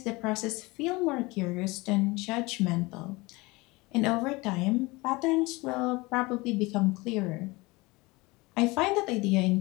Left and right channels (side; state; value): right; quieter; 23.3 dB